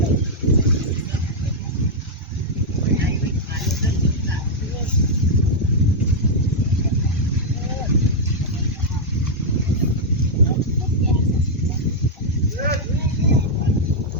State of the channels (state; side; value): normal; both; correlation -0.03